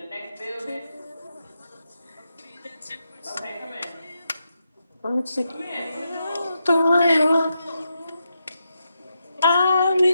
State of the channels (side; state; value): both; inverted; correlation -0.84